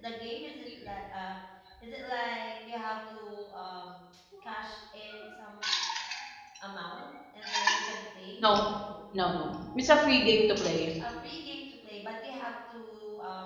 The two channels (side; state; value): both; identical; correlation 1.00